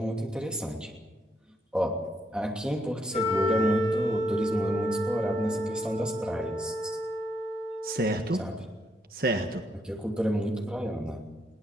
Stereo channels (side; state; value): both; normal; correlation 0.76